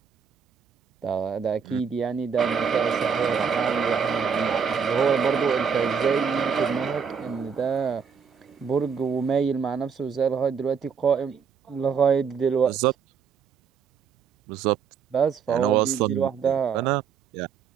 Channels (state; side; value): quieter; left; 6.6 dB